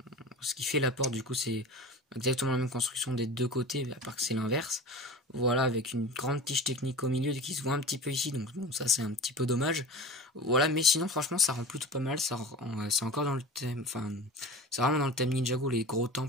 qui fait la porte du coup c'est exactement la même construction des deux côtés, à part que c'est l'inverse. Voilà, avec une grande tige technique au milieu qui se voit un petit peu ici, donc bon, ça c'est un petit peu dommage. Voilà, mais sinon franchement ça rend plutôt pas mal, c'est encore dans le thème, enfin c'est vraiment dans le thème Ninjago, les gros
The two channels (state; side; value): normal; both; correlation 0.35